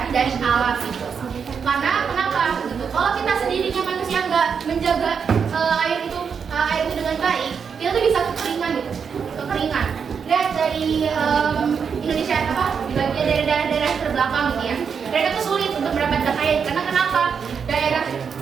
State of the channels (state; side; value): quieter; left; 6.5 dB